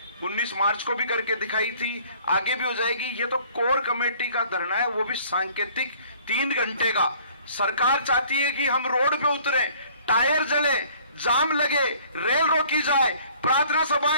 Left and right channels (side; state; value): both; inverted; correlation -0.56